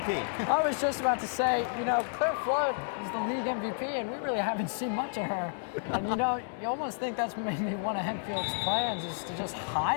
I was just about to say, you know, Claire Flood is the league MVP, and we really haven't seen much of her. And, you know, you almost think that's maybe one of Hempfield's plans is to just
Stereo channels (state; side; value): silent; right; digital silence